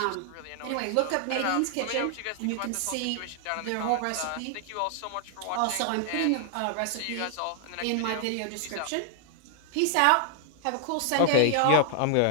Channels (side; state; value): both; different; correlation 0.00